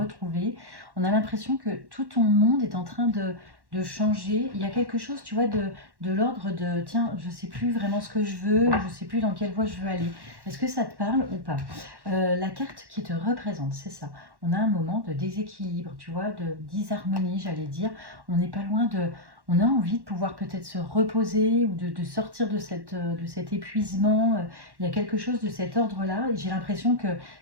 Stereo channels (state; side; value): late; left; 1.1 ms